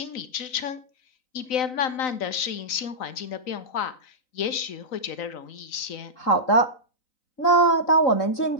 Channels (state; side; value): late; right; 3.9 ms